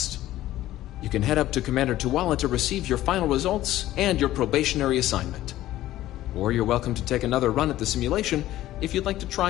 You can head up to Commander Tuala to receive your final results and your probationary assignment. Or you're welcome to take another run at the simulation if you'd like to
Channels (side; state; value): right; quieter; 14.6 dB